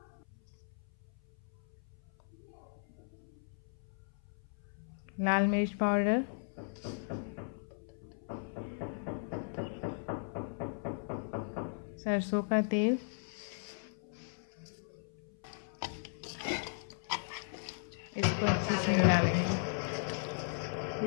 लाल मिर्च पाउडर, सरसों का तेल,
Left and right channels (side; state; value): right; silent; 53 dB below the other